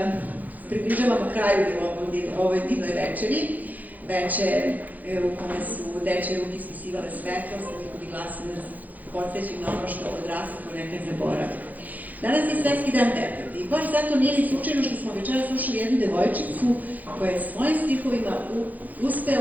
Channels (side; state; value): left; late; 0.081 ms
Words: približavamo kraju ovoj divnoj večeri. Večer u kome su dečje ruke ispisivale svetlost, njihovi glasovi nas podsjećaju na ono što odrastamo nekad zaboravi. Danas je Svetski dan deteta i baš zato nije ni slučajno što smo večera slušali jednu devojčicu koja je svojim stihovima